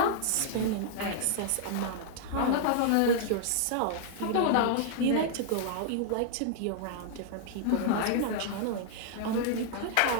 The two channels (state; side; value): different; both; correlation -0.01